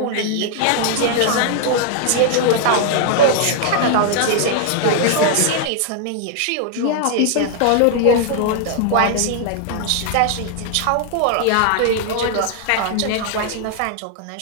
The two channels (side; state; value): both; different; correlation 0.00